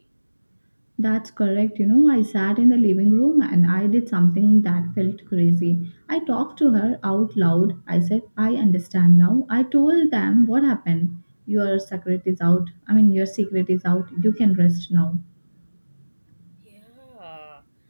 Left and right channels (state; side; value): inverted; both; correlation -1.00